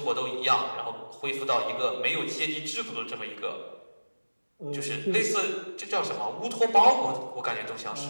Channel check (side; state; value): both; inverted; correlation -1.00